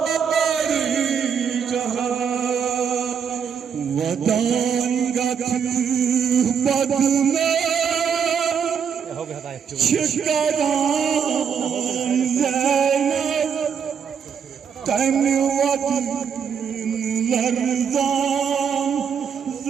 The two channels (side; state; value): left; quieter; 7.2 dB